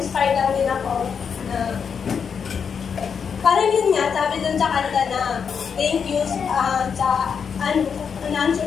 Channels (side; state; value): right; quieter; 6.6 dB